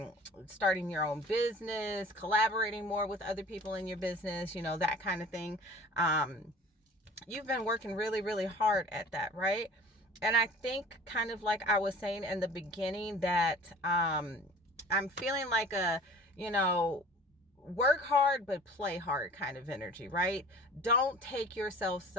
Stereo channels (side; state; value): both; normal; correlation 0.45